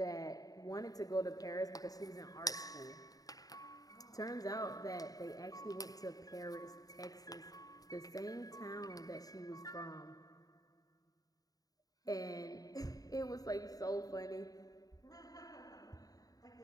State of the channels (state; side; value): late; right; 0.18 ms